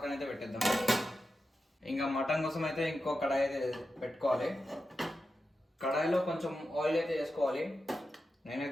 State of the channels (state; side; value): normal; both; correlation 0.91